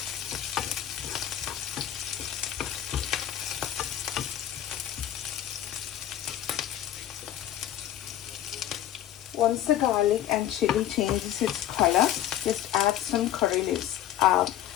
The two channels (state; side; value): quieter; right; 11.8 dB